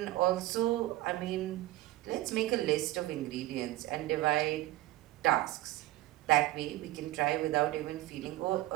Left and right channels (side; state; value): left; quieter; 17.1 dB